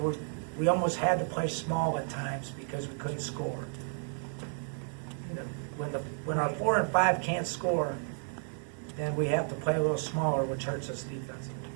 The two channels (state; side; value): silent; left; 56 dB below the other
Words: we almost had to play small at times because we couldn't score. When our 4 and 5 can't score, then we have to play a little smaller, which hurts us defensively.